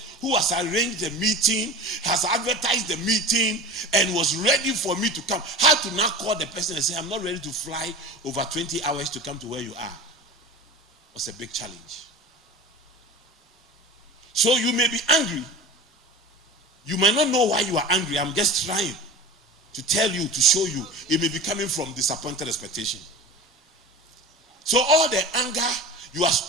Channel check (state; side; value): normal; both; correlation 0.34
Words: who has arranged the meeting, has advertised the meeting, and was ready for me to come. I had to now call the person and say, "I'm not ready to fly over 20 hours to come to where you are." It was a big challenge. So you may be angry. You might not know why you are angry. I'm just trying to tell you, to show you. It may be coming from disappointed expectation. So all the anger you are